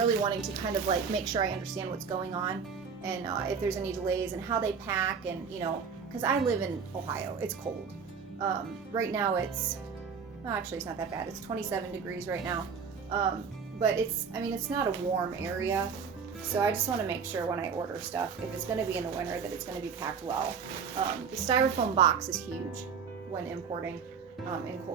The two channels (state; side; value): quieter; left; 6.1 dB